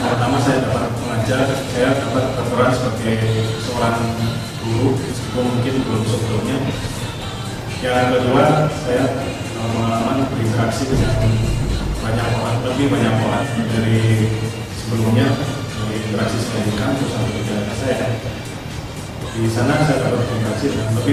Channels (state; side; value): identical; both; correlation 1.00